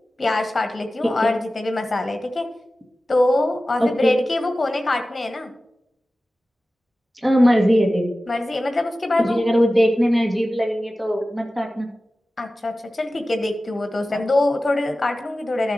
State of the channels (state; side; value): normal; both; correlation 0.95